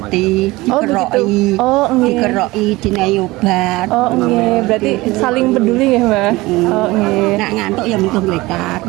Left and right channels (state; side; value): quieter; left; 20.6 dB